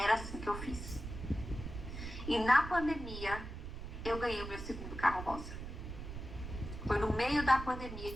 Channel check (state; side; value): noise; right; rumble, 8 dB below the sound